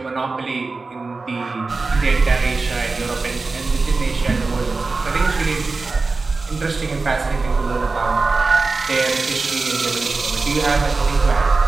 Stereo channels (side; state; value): left; quieter; 3.9 dB